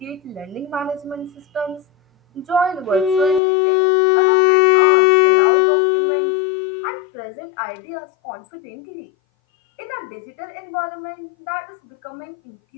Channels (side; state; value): right; drops out; at 3.4 s